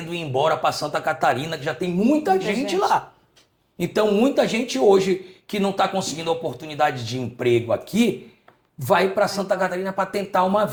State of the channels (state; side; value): identical; both; correlation 1.00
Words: ir embora para Santa Catarina, que já tem muita gente lá. Então, muita gente hoje que não está conseguindo a oportunidade de emprego aqui, vai para Santa Catarina para tentar uma